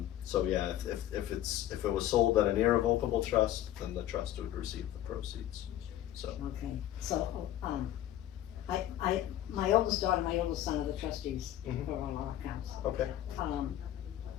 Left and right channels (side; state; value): right; quieter; 12.6 dB